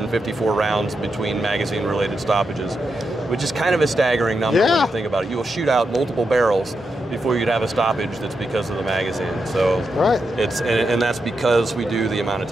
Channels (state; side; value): normal; both; correlation 0.85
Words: rounds between magazine related stoppages, which is kind of a staggering number when you think about it. You will shoot out multiple barrels before you'd have a stoppage that's because of the magazine. So it's and that's because we do the amount of